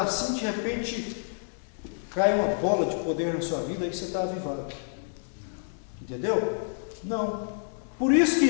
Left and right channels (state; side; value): silent; right; digital silence